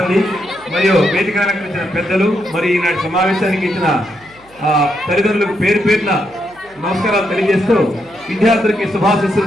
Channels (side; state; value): right; noise; hum, 29 dB below the sound